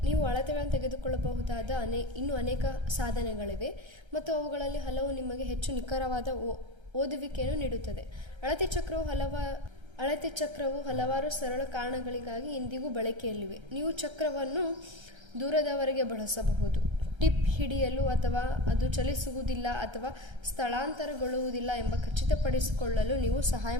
ನೀವು ಅಳತೆಗಳನ್ನು ತೆಗೆದುಕೊಳ್ಳಬಹುದಾದ ಇನ್ನೂ ಅನೇಕ ಸಾಧನಗಳಿವೆ ಮತ್ತು ಅವುಗಳಲ್ಲಿ ಹಲವು ನಿಮಗೆ ಹೆಚ್ಚು ನಿಖರವಾದ ಓದುವಿಕೆಯನ್ನು ನೀಡುತ್ತದೆ. ಅಳತೆ ಚಕ್ರವು ಹಲವಾರು ಸರಳ ಕಾರಣಗಳಿಗಾಗಿ ಇಂದಿಗೂ ಬಳಕೆಯಲ್ಲಿವೆ. ನೀವು ಚಕ್ರವನ್ನು ದೂರದವರೆಗೆ ಬಳಸಬಹುದು, ಟಿಪ್ ಹಿಡಿಯಲು ಅಥವಾ ಅದು ಚಲಿಸುವುದಿಲ್ಲ ಅಥವಾ ಸ್ಥಳಾಂತರಗೊಳ್ಳುವುದಿಲ್ಲ ಎಂಬ ಖಚಿತಪಡಿಸಿಕೊಳ್ಳಲು ನೀವು ಸಹಾಯ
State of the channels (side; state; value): left; late; 1.3 ms